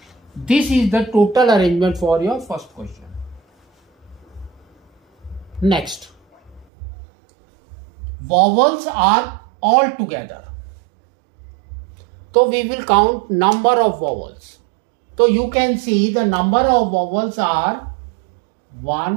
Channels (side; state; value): left; drops out; at 6.7 s